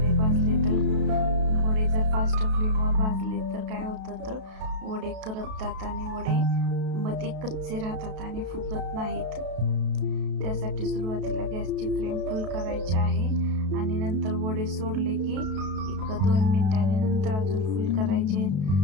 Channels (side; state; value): left; late; 32 ms